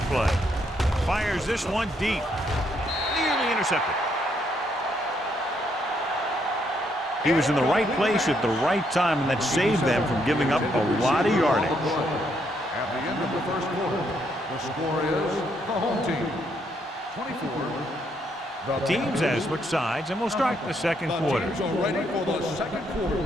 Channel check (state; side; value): normal; both; correlation 0.74